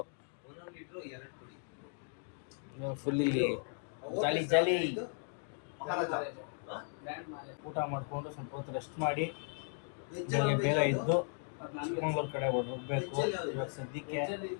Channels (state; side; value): silent; right; 53 dB below the other